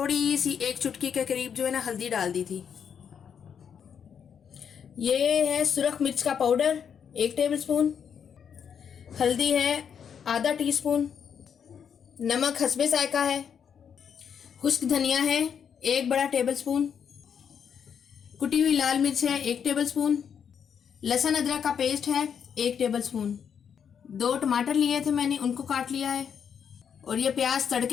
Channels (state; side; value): quieter; right; 7.6 dB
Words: सी 1 चुटकी के करीब जो है ना हल्दी डाल दी थी। ये है सुरख मिर्च का पाउडर 1 टेबलस्पून, हल्दी है आधा टीस्पून, नमक हस्बे जायका है, खुश्क धनिया है 1 बड़ा टेबलस्पून, कुटी हुई लाल मिर्च है 1 टेबलस्पून, लहसुन अदरक का पेस्ट है 1 टेबलस्पून, 2 टमाटर लिए थे मैंने, उनको काट लिया है। और ये प्याज